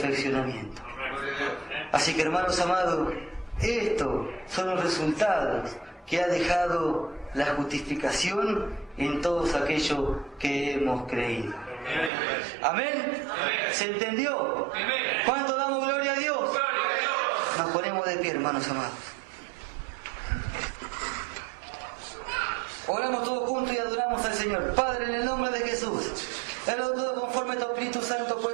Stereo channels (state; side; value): drops out; left; at 12.1 s